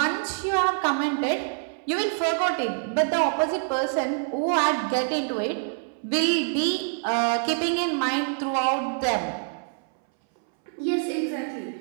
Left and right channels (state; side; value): silent; left; 61 dB below the other